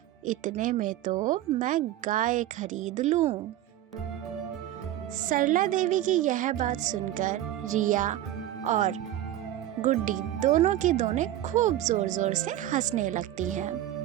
इतने में तो मैं गाय खरीद लूं। सरला देवी की यह बात सुनकर रिया और गुड्डी दोनों की दोनों खूब जोर जोर से हंसने लगती हैं।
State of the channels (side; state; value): left; quieter; 13.2 dB